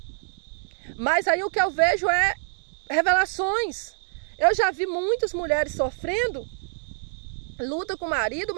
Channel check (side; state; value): left; silent; digital silence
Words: Mas aí o que eu vejo é revelações. Eu já vi muitas mulheres sofrendo luta com o marido